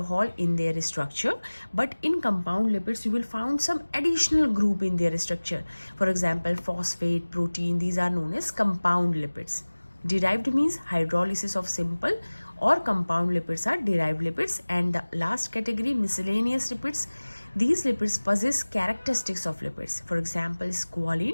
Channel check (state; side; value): inverted; both; correlation -1.00